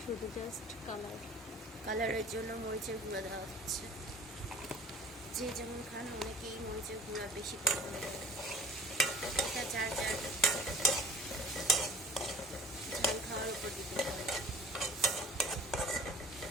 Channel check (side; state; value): both; normal; correlation 0.47